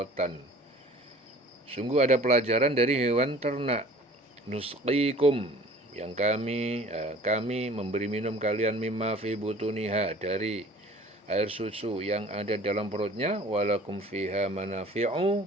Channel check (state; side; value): normal; both; correlation 0.48